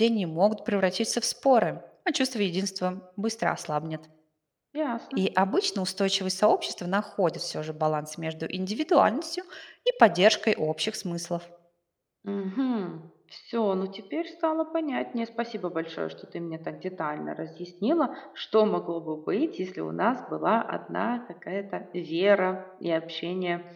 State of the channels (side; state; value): both; identical; correlation 1.00